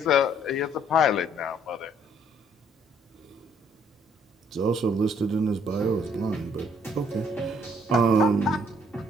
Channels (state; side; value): normal; both; correlation 0.64